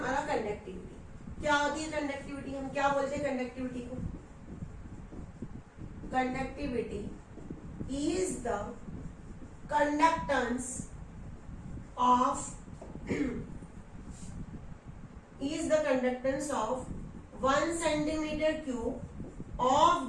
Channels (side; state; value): both; identical; correlation 1.00